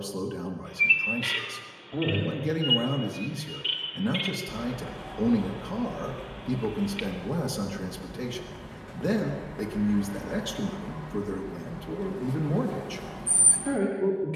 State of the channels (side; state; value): both; identical; correlation 1.00